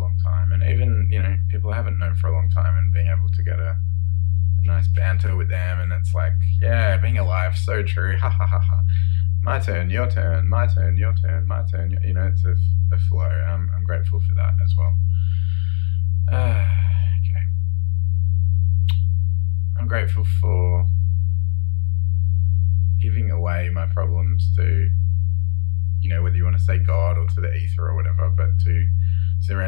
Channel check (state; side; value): silent; right; digital silence